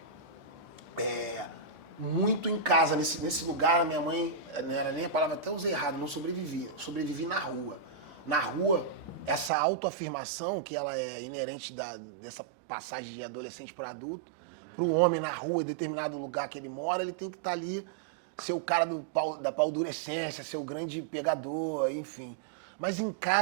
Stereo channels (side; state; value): left; drops out; at 9.5 s